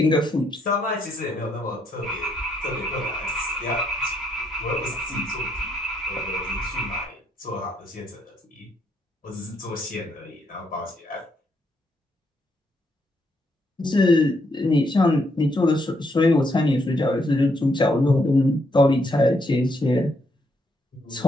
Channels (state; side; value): normal; both; correlation 0.75